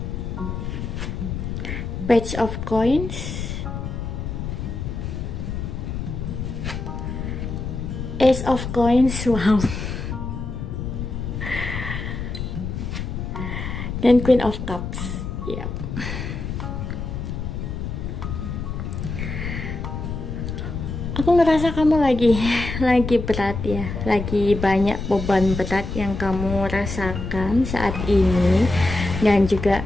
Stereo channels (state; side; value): noise; left; rumble, 5 dB below the sound